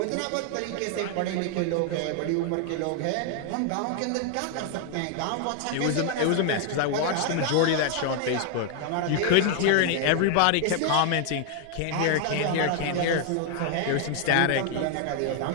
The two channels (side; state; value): both; different; correlation 0.00